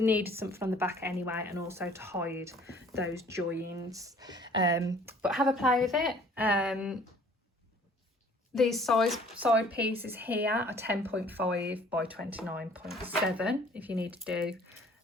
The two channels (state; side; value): normal; both; correlation 0.54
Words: needed something on the back anyway, and also to hide those joins. But have a play with it. These side pieces here are 10.5 by 29.7 if you need to do